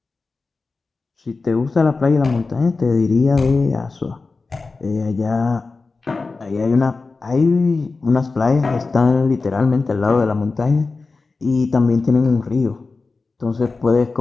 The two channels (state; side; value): quieter; right; 4.0 dB